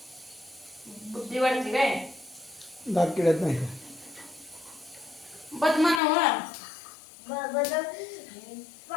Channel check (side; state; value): right; drops out; at 6.0 s